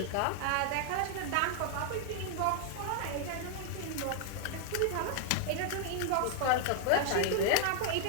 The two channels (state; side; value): different; both; correlation 0.00